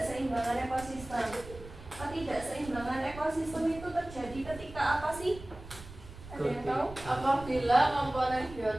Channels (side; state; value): right; noise; rumble, 15 dB below the sound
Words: ekosistem. Ketidakseimbangan ekosistem itu terjadi ketika apa sih? Ada yang tahu? Apabila komponen